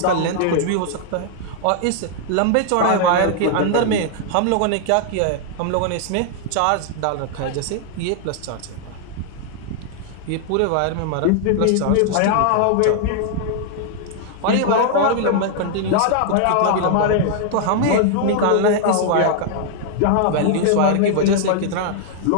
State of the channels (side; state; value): both; different; correlation -0.01